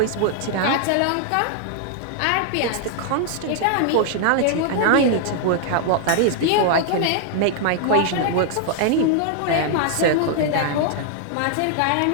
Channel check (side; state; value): both; different; correlation 0.00